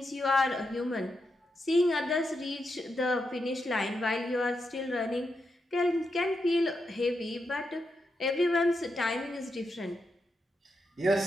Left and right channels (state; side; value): normal; both; correlation 0.85